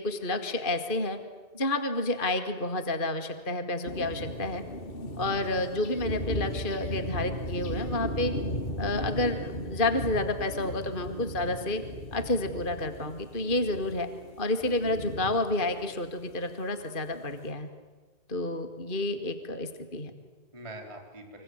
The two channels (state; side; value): late; right; 2.4 ms